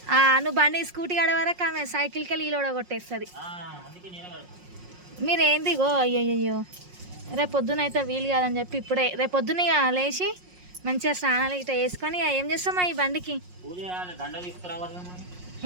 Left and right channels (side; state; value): left; late; 5.5 ms